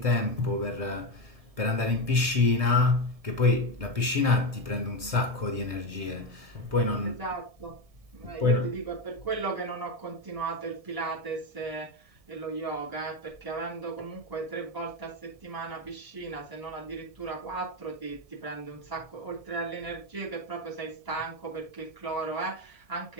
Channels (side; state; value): left; late; 1.7 ms